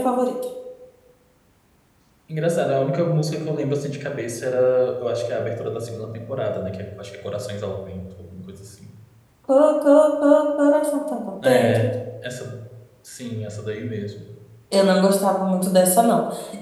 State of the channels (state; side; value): identical; both; correlation 1.00